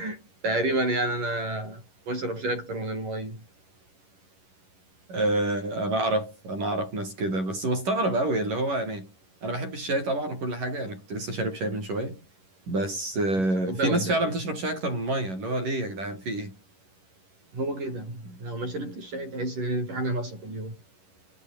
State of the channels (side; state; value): left; late; 11 ms